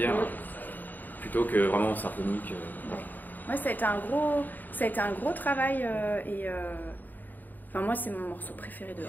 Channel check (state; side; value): late; right; 0.087 ms